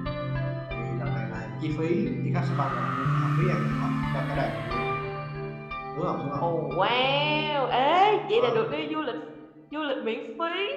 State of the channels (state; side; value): identical; both; correlation 1.00